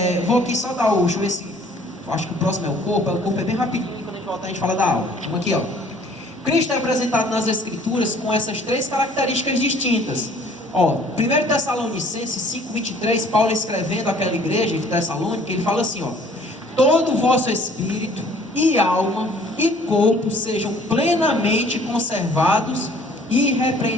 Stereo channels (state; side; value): normal; both; correlation 0.55